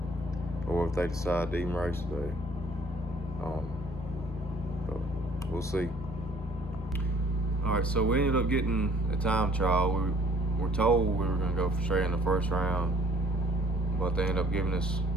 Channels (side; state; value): both; normal; correlation 0.58